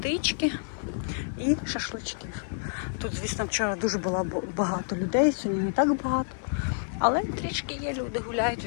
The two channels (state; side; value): silent; right; digital silence